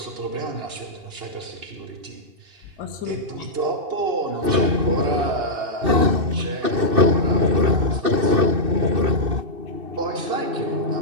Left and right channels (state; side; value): late; left; 2.6 ms